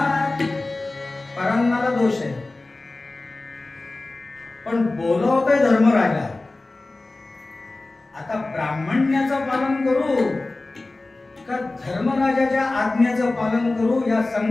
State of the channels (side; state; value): right; quieter; 3.1 dB